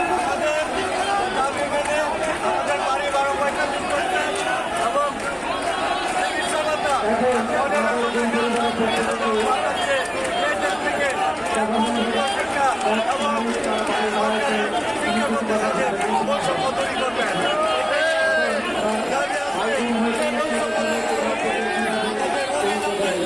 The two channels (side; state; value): both; identical; correlation 1.00